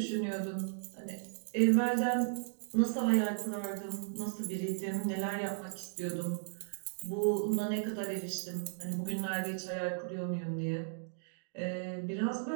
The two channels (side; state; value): left; silent; digital silence